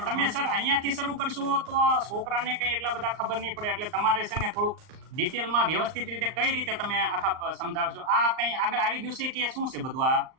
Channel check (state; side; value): late; left; 39 ms